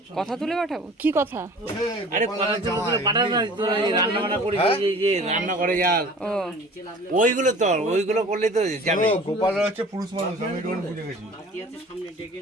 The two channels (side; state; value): both; normal; correlation 0.45